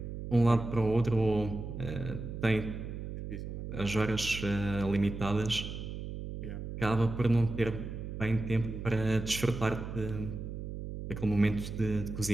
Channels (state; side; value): noise; right; hum, 7 dB below the sound